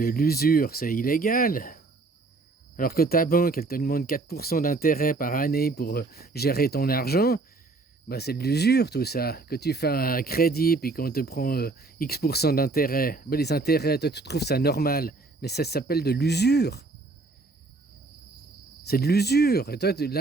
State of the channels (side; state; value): left; quieter; 3.6 dB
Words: c'est illégal. Alors que ta banque, elle te demande 4% d'intérêt par année pour gérer ton argent, bah c'est de l'usure tout ça. Que tu fais un crédit puis qu'on te prend X% d'intérêt, bah les intérêts, toi tu trouves ça normal. Mais ça s'appelle de l'usure. C'est de l'usure. Et toi,